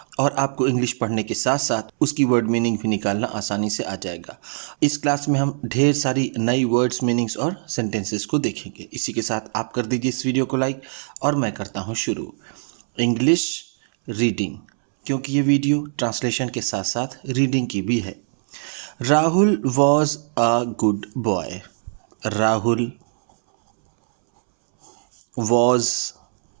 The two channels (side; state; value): left; silent; 64 dB below the other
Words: और आपको इंग्लिश पढ़ने के साथ साथ उसकी वर्ड मीनिंग भी निकालना आसानी से आ जाएगा। इस क्लास में हम ढेर सारी नई वर्ड्स मीनिंग्स और सेंटेंसेस को देखेंगे। इसी के साथ आप कर दीजिए इस वीडियो को लाइक और मैं करता हूँ शुरू। इंग्लिश रीडिंग, क्योंकि ये वीडियो ट्रांसलेशन के साथ साथ रीडिंग की भी है। Rahul was a good boy. Rahul was,